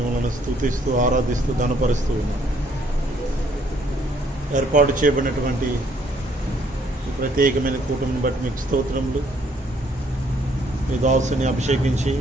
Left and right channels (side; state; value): both; normal; correlation 0.66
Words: స్తుతిస్తూ ఆరాధిస్తూ ఘనపరుస్తూ ఉన్నాం. ఏర్పాటు చేయబడినటువంటి ఈ ప్రత్యేకమైన కూటమిని బట్టి మీకు స్తోత్రములు. మీ దాసుని అభిషేకించి